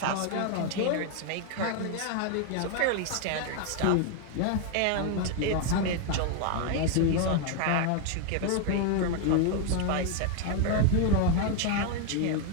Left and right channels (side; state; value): both; different; correlation 0.00